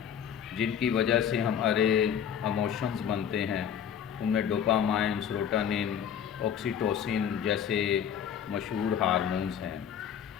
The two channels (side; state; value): right; quieter; 8.6 dB